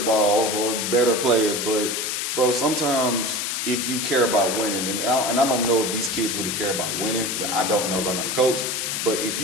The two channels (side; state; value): left; noise; hiss, 1 dB below the sound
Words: ball for better players, but bro, sometimes if you care about winning, and I don't know if these kids really care about winning. I don't know, 'cause I'm not a coach. But if